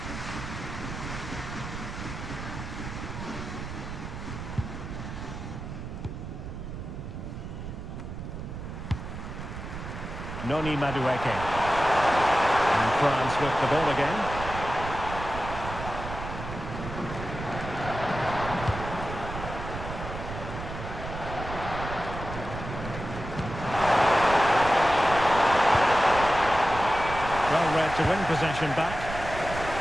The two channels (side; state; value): right; noise; rumble, 8 dB below the sound